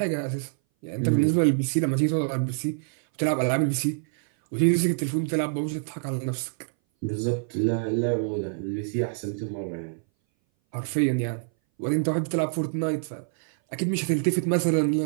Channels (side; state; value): left; silent; 59 dB below the other